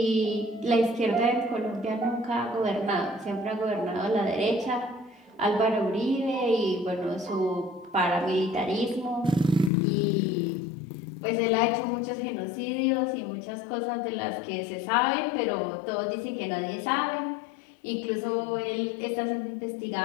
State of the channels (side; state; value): right; drops out; at 9.7 s